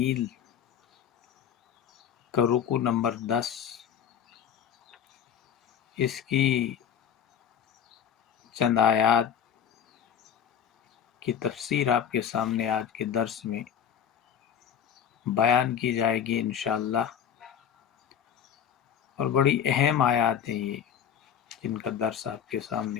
کا رکوع نمبر 10، اس کی چند آیات کی تفسیر آپ کے سامنے آج کے درس میں بیان کی جائے گی انشاءاللہ، اور بڑی اہم آیات ہیں یہ جن کا درس آپ کے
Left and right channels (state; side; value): quieter; right; 8.8 dB